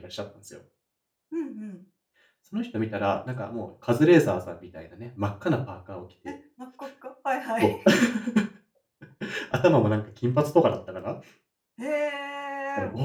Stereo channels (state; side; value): identical; both; correlation 1.00